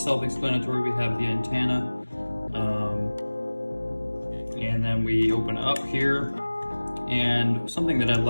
We have the antenna, and then we open up here. And something that I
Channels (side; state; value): both; inverted; correlation -1.00